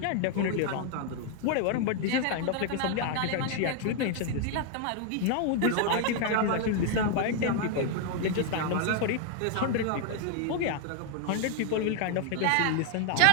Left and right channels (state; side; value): different; both; correlation 0.00